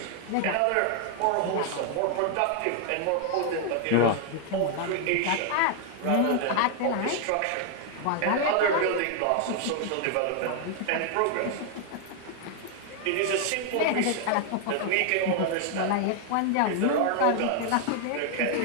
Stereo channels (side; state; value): both; different; correlation 0.00